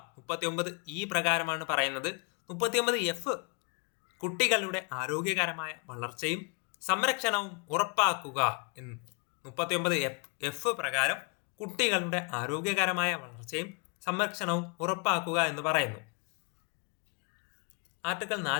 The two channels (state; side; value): quieter; right; 34.1 dB